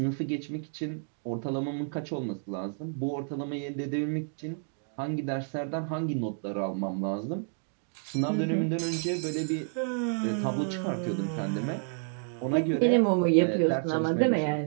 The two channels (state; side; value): silent; left; 58 dB below the other